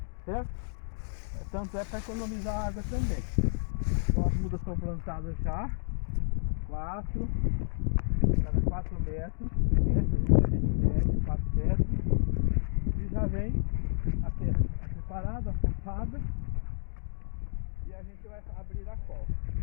certo? Tanto é para economizar água também. Então as mudas estão plantadas já, cada 4 metros, né? A gente mede 4 metros e já vem a terra preparada, afofada, e a gente vai abrir a cova.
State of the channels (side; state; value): right; silent; digital silence